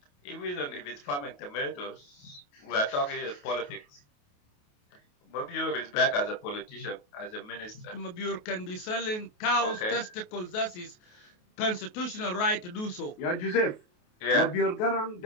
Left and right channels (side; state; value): right; late; 28 ms